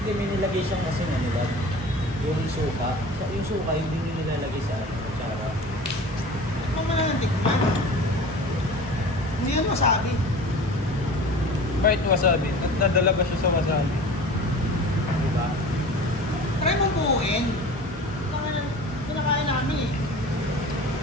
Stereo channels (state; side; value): normal; both; correlation 0.39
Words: may nilagay siyang kasi nga nila. Yung suka. Yung suka, hindi nyo nilalagay sa atsara. Tikman mo na ng tikman. Hindi yan wasabi. Kahit wasabi, nadala ba siya sa wasabi? Diba? Try mong buuin. Pinakain namin eh.